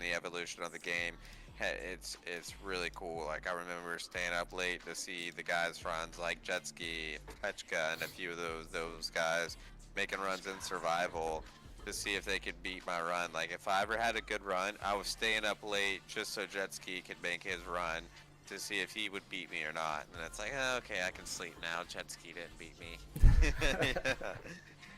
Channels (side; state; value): both; identical; correlation 1.00